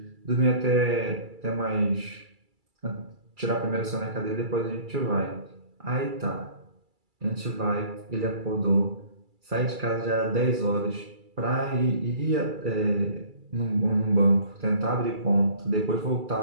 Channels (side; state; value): left; late; 2.3 ms